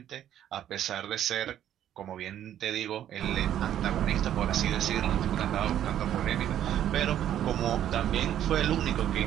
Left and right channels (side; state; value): left; quieter; 11.0 dB